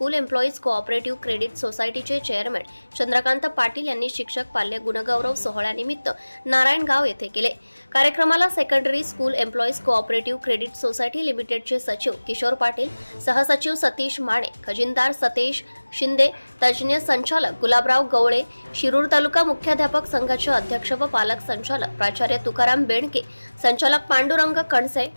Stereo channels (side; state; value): both; inverted; correlation -1.00